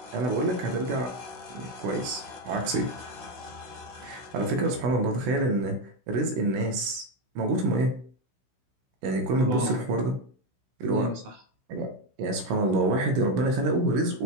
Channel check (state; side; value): late; left; 16 ms